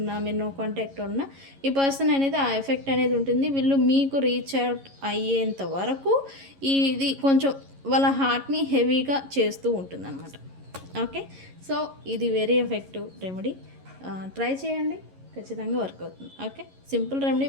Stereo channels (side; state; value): left; late; 11 ms